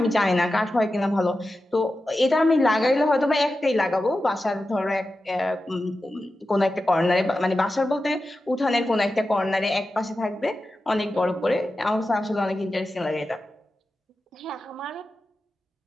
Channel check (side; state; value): both; normal; correlation 0.92